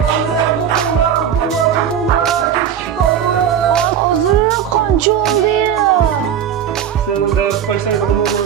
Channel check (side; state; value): left; quieter; 9.0 dB